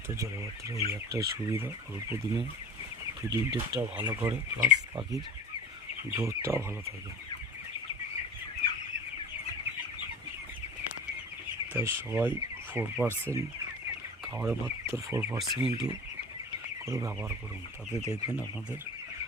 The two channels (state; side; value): normal; both; correlation 0.38